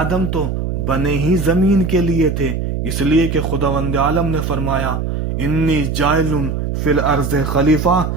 تو بنے ہی زمین کے لیے تھے، اس لیے کہ خداوند عالم نے فرمایا انی جائل فی الارض خلیفہ،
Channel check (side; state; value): right; noise; hum, 2 dB below the sound